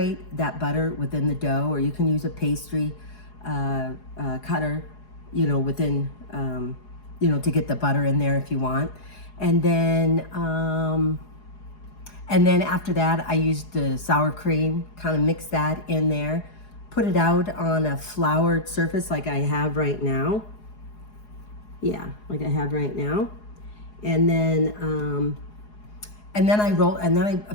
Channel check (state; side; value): late; right; 4.8 ms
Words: that butter within the dough, or you can use a pastry cutter, within, to get the butter in there if you want. And then after that, I used the sour cream, kind of mix that in there, put it out on a floured surface like I have right now. Yeah, like I have right now. And then I